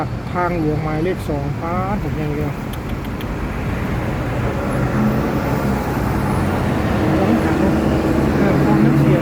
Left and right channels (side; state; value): both; identical; correlation 1.00